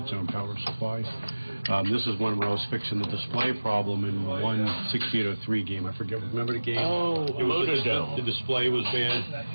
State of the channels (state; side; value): inverted; both; correlation -1.00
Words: own power supply. This is one where I was fixing the display problem in one 6803 game. I forget. Remember the game? Oh, the display was bad,